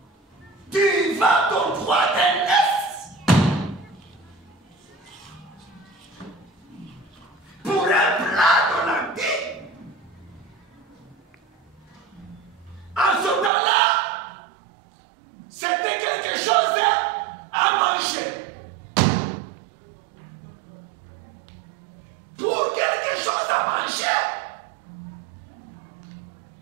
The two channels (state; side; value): drops out; left; at 13.5 s